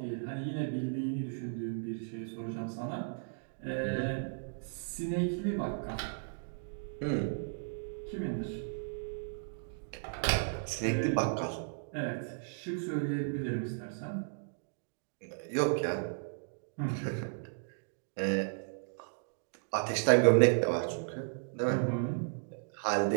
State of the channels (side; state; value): left; silent; digital silence